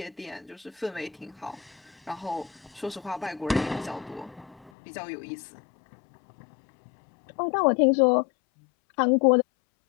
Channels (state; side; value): drops out; right; at 4.7 s